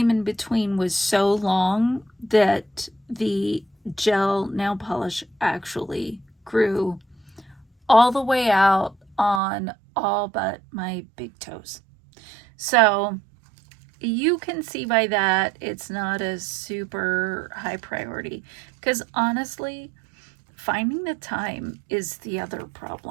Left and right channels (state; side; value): drops out; left; at 9.4 s